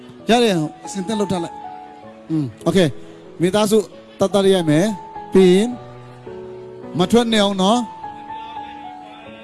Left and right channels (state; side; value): identical; both; correlation 1.00